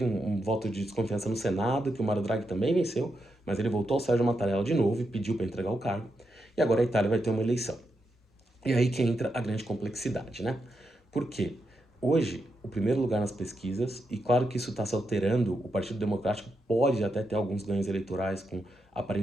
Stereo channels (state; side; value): normal; both; correlation 0.84